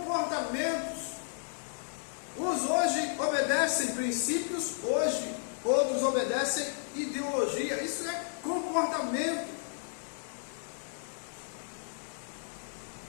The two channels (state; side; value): silent; right; digital silence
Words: Uns hoje obedecem princípios, hoje outros obedecem ideologia. Isso é comportamento.